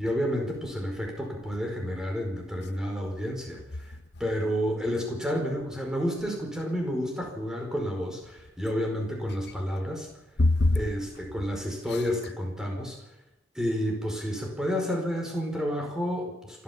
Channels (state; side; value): normal; both; correlation 0.82